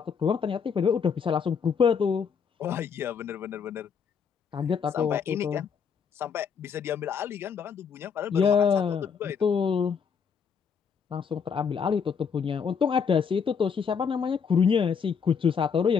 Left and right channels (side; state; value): right; quieter; 6.5 dB